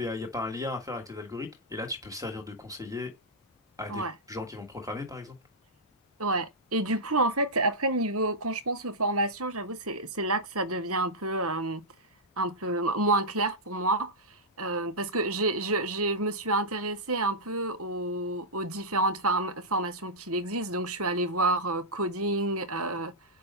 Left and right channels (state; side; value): normal; both; correlation -0.10